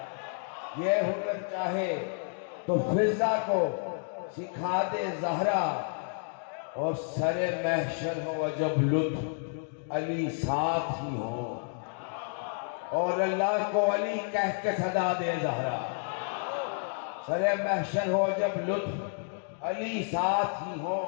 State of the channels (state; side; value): silent; right; 57 dB below the other